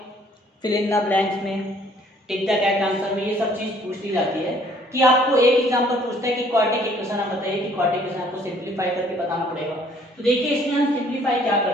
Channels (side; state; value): both; normal; correlation 0.60